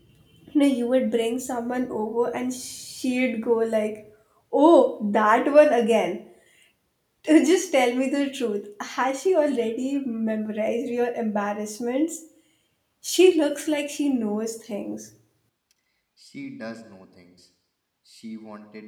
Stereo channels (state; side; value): identical; both; correlation 1.00